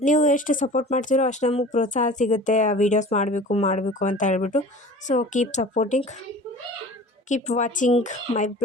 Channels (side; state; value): both; normal; correlation 0.41